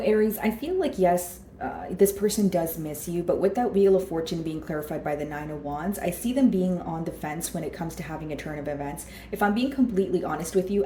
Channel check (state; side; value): identical; both; correlation 1.00